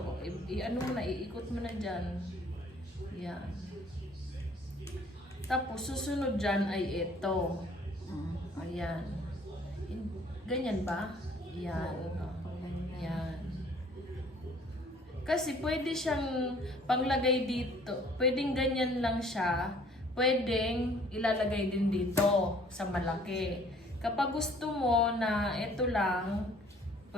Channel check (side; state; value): both; normal; correlation 0.56